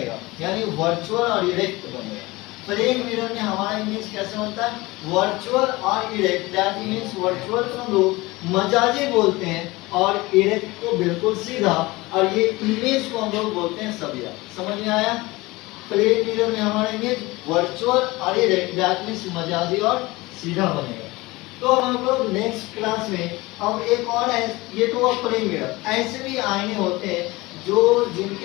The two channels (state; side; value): quieter; right; 21.4 dB